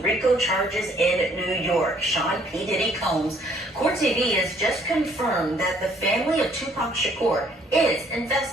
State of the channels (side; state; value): both; normal; correlation 0.62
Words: RICO charges in New York. Sean P. Diddy Combs. Court TV has just confirmed that the family of Tupac Shakur is